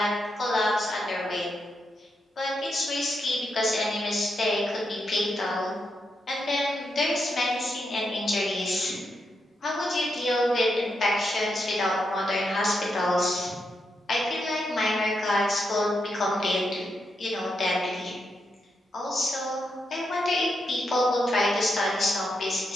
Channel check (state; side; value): normal; both; correlation 0.83